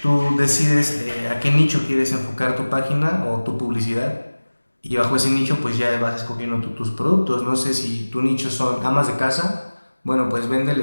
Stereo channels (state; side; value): inverted; both; correlation -1.00